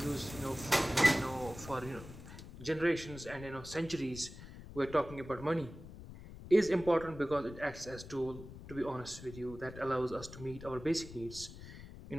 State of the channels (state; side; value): noise; left; rumble, 14 dB below the sound